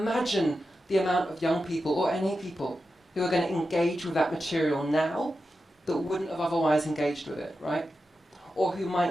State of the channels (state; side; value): normal; both; correlation 0.90